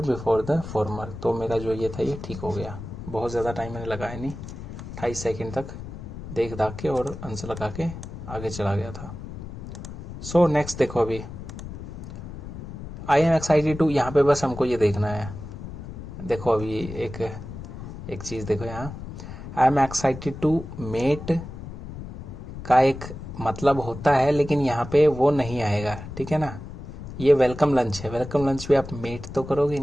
before the former. तो मेरा जो ये था ये ठीक हो गया, बहुत ज़्यादा टाइम मैंने लगाया नहीं, 28 सेकेंड तक देख दाख के और आंसर लगा के आगे चला गया था। सो नेक्स्ट देखो अभी, आई एम एक्साइटेड टू, यहाँ पे बस हमको ये देखना है। देखो अभी एक चीज़ देखो यहाँ, I am excited to met का एक मतलब होता है, लेकिन यहाँ पे वो नहीं आएगा, ठीक है ना। ये वेलकम लंच है, वेलकम लंच पे आप मेट तो करोगे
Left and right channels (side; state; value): left; noise; rumble, 11 dB below the sound